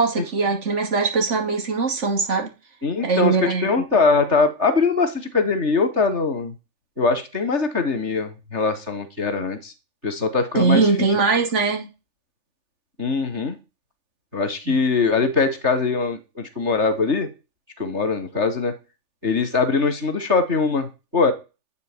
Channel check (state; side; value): late; left; 3.4 ms